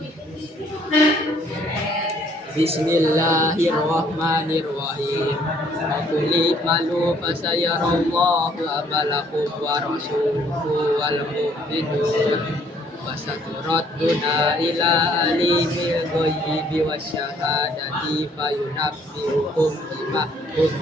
Bismillahirrahmanirrahim. Qul malu fasayarallahu amalakum wa rasuluhu wal mu'minun wa saturadduna ila alimil ghaibi wasyahadati fayunabbi'ukum bima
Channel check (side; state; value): both; normal; correlation 0.63